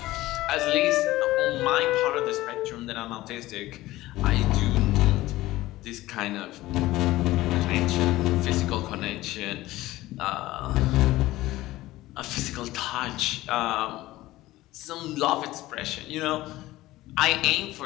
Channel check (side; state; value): right; quieter; 17.2 dB